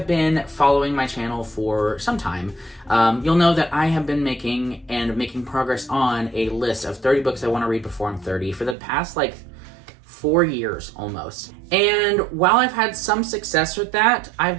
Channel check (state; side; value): drops out; left; at 8.8 s